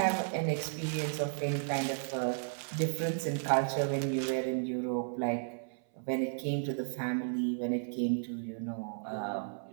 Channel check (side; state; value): left; silent; 55 dB below the other